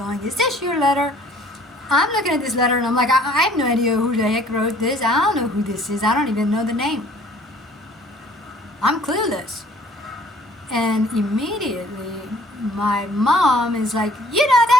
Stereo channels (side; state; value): both; normal; correlation 0.55